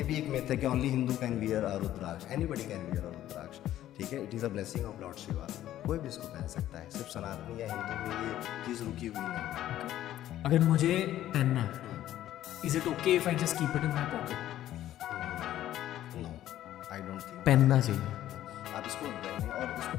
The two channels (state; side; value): quieter; right; 12.9 dB